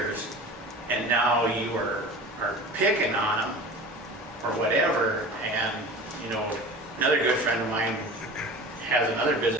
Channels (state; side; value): normal; both; correlation 0.36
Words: and now you are picking on them or whatever. And another good friend of mine has another